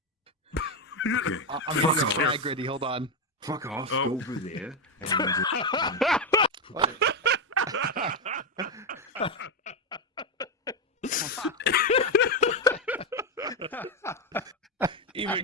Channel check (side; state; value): both; normal; correlation 0.08